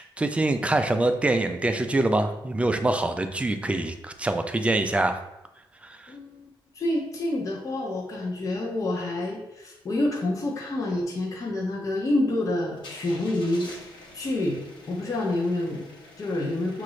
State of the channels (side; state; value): both; normal; correlation 0.84